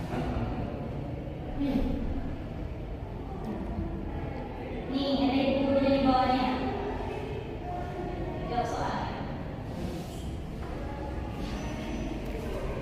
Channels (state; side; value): identical; both; correlation 1.00